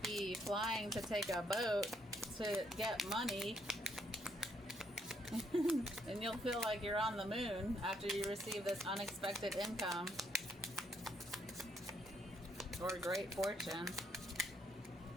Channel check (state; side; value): normal; both; correlation 0.73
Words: be flying to take a boat to get money. And you'll feel like you're on the moon after you receive this unexpected income or great fortune.